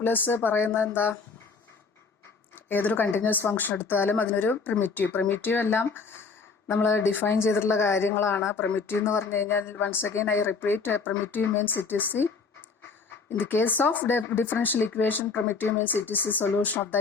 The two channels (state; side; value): quieter; right; 4.9 dB